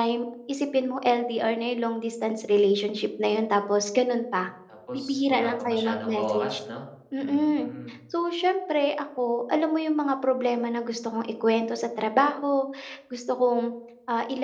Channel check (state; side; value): identical; both; correlation 1.00